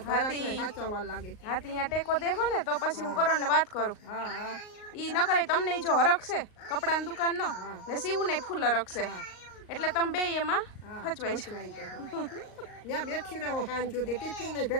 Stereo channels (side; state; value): right; late; 38 ms